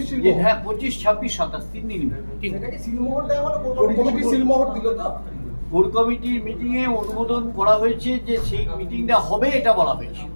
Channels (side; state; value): both; inverted; correlation -1.00